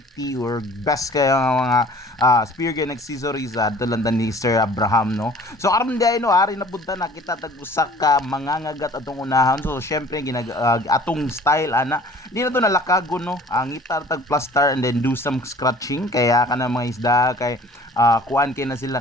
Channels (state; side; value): normal; both; correlation 0.50